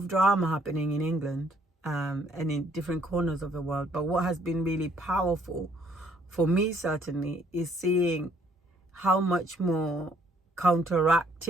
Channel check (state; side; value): normal; both; correlation 0.65